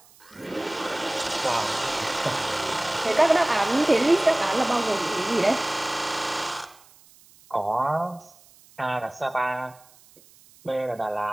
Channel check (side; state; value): right; noise; hiss, 27 dB below the sound